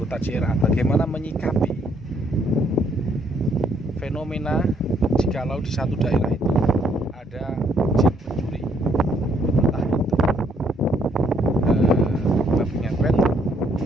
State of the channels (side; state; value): both; normal; correlation 0.69